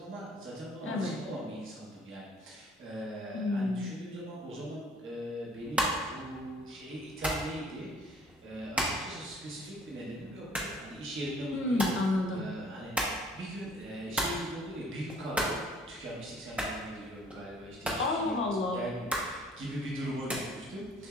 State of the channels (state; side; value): normal; both; correlation 0.57